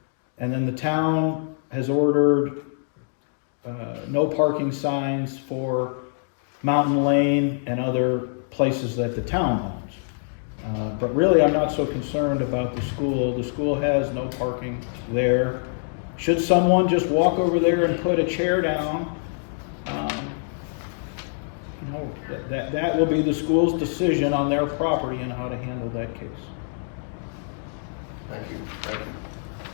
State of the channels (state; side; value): silent; right; digital silence